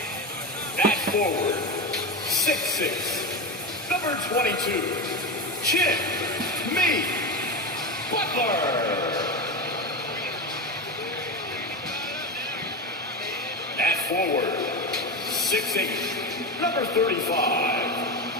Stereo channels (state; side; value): normal; both; correlation 0.20